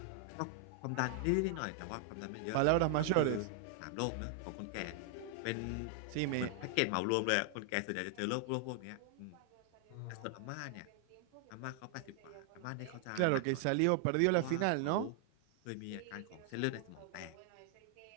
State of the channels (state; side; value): different; both; correlation 0.00